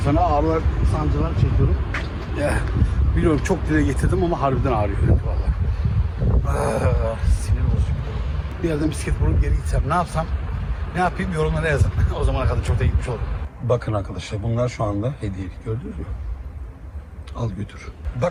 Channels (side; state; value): both; identical; correlation 1.00